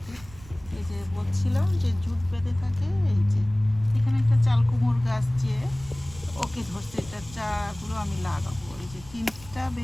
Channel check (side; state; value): right; noise; rumble, 19 dB below the sound